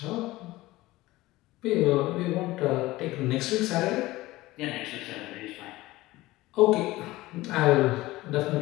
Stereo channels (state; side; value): quieter; right; 18.4 dB